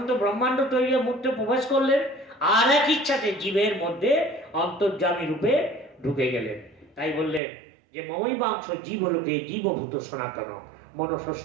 ব্রহ্মাণ্ড তৈরি মধ্যে প্রবেশ করলেন, আর এক ইচ্ছাতে জীবের মধ্যে অন্তর্যামী রূপে ঢুকে গেলেন। তাই বললেন যে মমই বাংশ জীবলোকে জীবভূত সনাতন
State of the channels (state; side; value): drops out; left; at 7.4 s